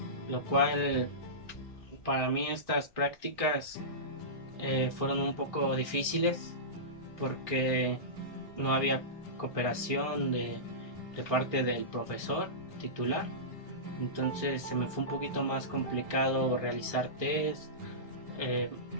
lo cual para mí estas prácticas fueron un poco difíciles porque no había cooperación de parte del profesor titular, entonces se me fue un poquito más complicado realizar test,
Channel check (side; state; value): right; late; 1.6 ms